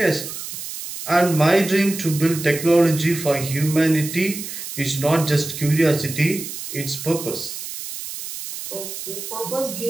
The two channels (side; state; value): right; noise; hiss, 9 dB below the sound